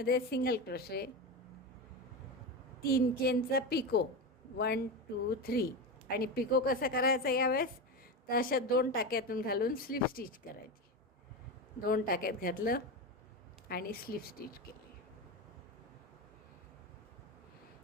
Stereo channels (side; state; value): both; normal; correlation 0.19